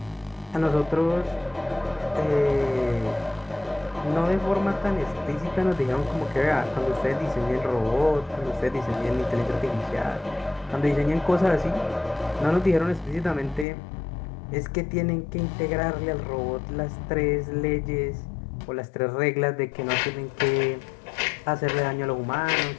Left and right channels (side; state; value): right; drops out; at 13.7 s